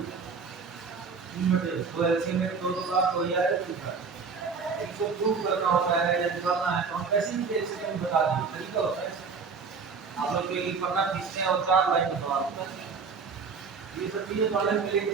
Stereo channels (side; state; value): left; quieter; 5.2 dB